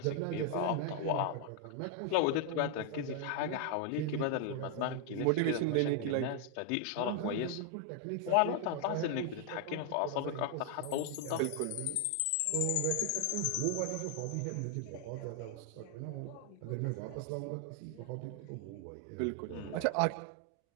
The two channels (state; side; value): different; both; correlation 0.00